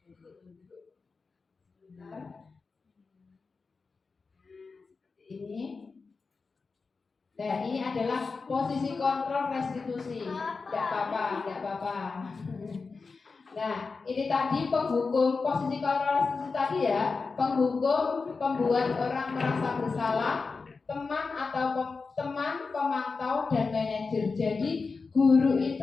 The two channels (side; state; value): right; quieter; 4.5 dB